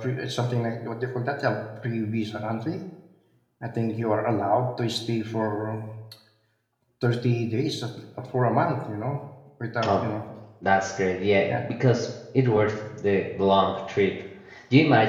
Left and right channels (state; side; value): identical; both; correlation 1.00